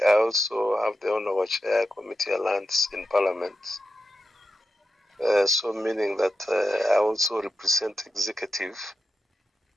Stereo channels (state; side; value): normal; both; correlation 0.89